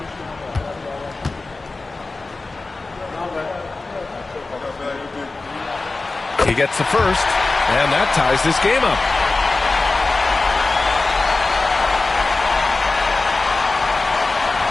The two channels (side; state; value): right; quieter; 3.5 dB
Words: He gets the first, and that ties this game up.